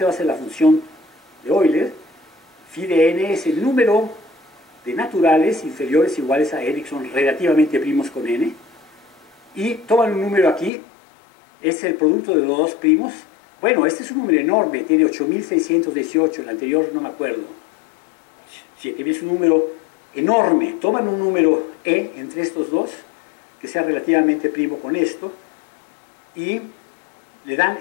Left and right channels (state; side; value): drops out; right; at 10.7 s